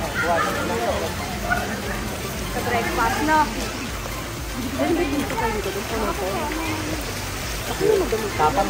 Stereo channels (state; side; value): identical; both; correlation 1.00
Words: Sa breakfast, no? Tapang.